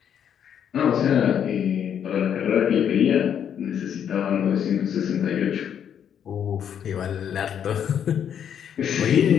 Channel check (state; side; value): quieter; right; 8.8 dB